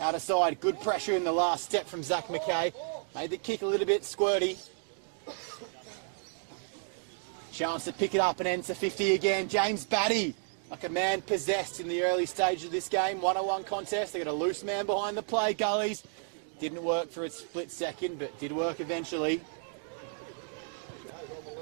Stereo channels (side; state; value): left; silent; 57 dB below the other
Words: of side. Good pressure in the last step from Zach Mackay. Made the kick a little bit squirty. Chance to pick it up and enter 50 again. James Batty, like a man possessed in the early stage of this game. 1-on-1 contest. They got a loose man behind the play. Gullies. Didn't work for a split second, but did work eventually.